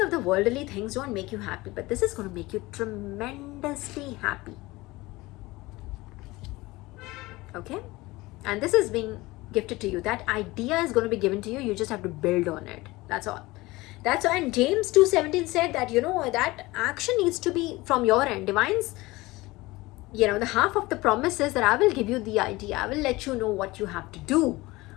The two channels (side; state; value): right; quieter; 20.7 dB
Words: of the worldly things don't make you happy, but this is going to make you tremendously happy. Okay? And this is being gifted to you. That idea is going to be given to you. You just have to build on it. That's all. That's why. And James 2:17 said that, that action needs to be from your end. Divine's, the half of the promise is that I will give you the idea. I will let you know what you have to do.